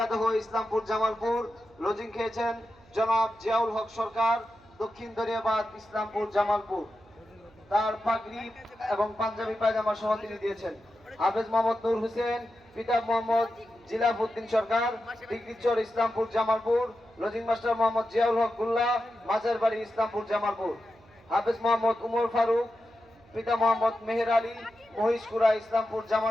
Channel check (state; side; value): noise; right; hum, 28 dB below the sound